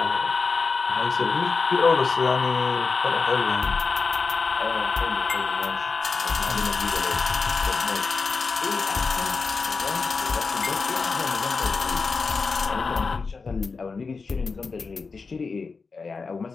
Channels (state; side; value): quieter; right; 4.6 dB